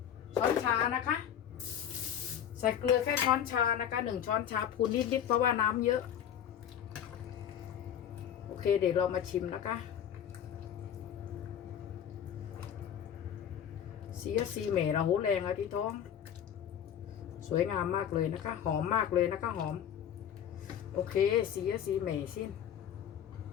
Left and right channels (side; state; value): right; quieter; 9.5 dB